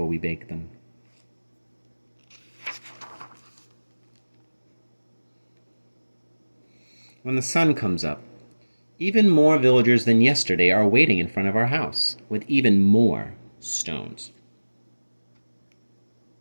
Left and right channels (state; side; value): inverted; both; correlation -1.00